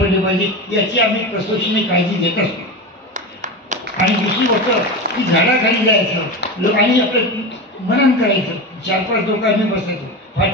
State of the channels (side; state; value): both; normal; correlation 0.23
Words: पडले पाहिजे, याची आम्ही कसोशीने काळजी घेत असतो. आणि दुसरी गोष्ट की झाडाखाली जायचं आणि आपलं मनन करायचं. 4-5 लोक आम्ही बसायचो.